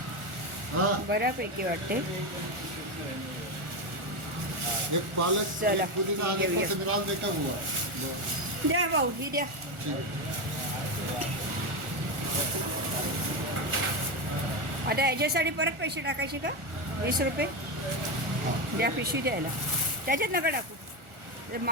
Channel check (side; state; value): left; late; 1.4 ms